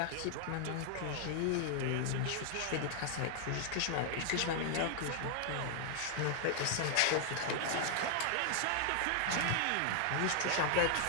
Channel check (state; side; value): different; both; correlation 0.00